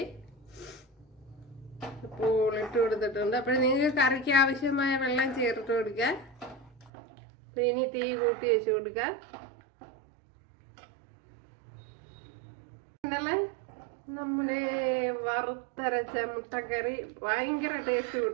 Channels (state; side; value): drops out; left; at 6.9 s